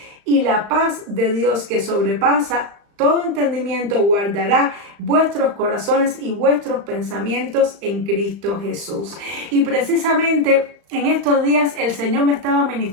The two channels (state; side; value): late; left; 35 ms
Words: y la paz de Dios, que sobrepasa todo entendimiento, guardará vuestros corazones y vuestros pensamientos en Cristo Jesús. Y precisamente en estos días el Señor me estaba